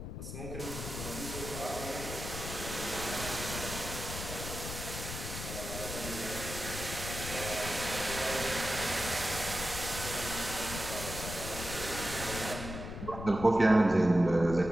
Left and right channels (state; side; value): noise; left; rumble, 7 dB below the sound